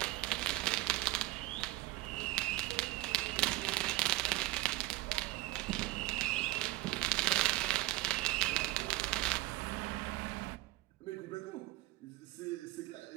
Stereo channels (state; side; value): quieter; left; 18.8 dB